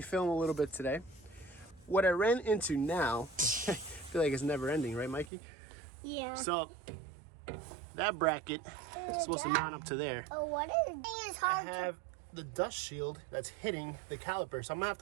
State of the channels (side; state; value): left; drops out; at 5.3 s